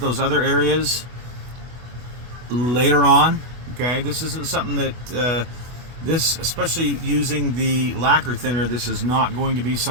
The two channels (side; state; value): left; late; 24 ms